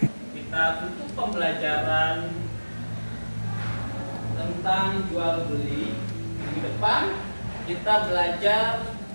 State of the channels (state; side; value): inverted; both; correlation -1.00